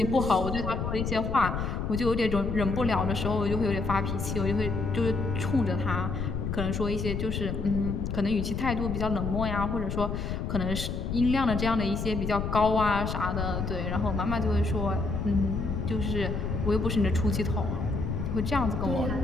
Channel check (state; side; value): noise; left; rumble, 2 dB below the sound